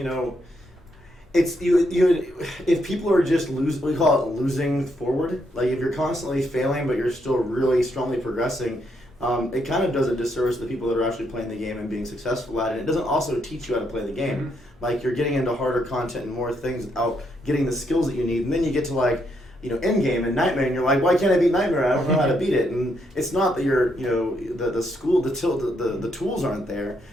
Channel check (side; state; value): both; normal; correlation 0.76